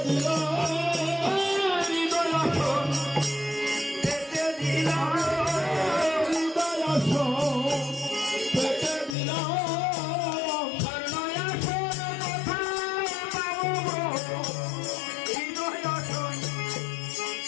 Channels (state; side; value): drops out; right; at 9.2 s